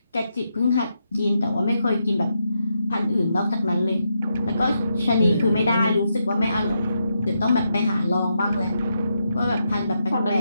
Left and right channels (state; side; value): inverted; both; correlation -0.82